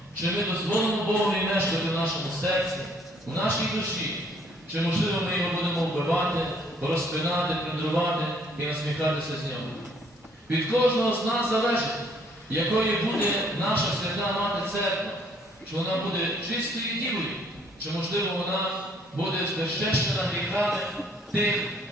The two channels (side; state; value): both; normal; correlation 0.63